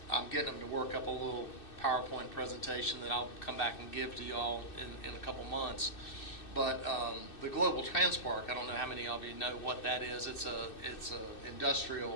getting them to work up a little PowerPoint presentation that I'll come back and give to y'all in a couple months. But the Global Transpark, I don't know how many of you know what that is. It's a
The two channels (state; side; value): late; right; 2.6 ms